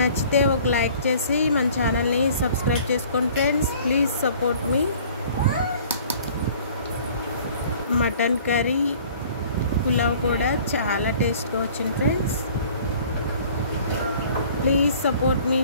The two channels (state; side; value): inverted; both; correlation -0.51